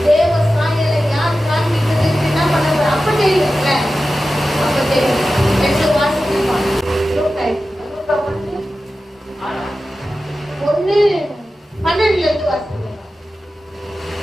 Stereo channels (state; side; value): normal; both; correlation 0.94